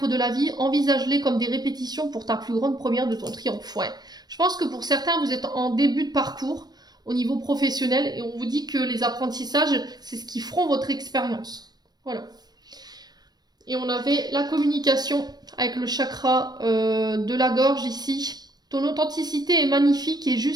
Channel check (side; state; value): left; late; 0.19 ms